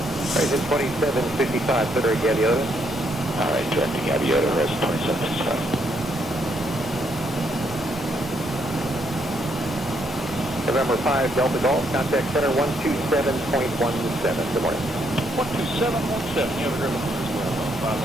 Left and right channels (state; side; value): normal; both; correlation 0.74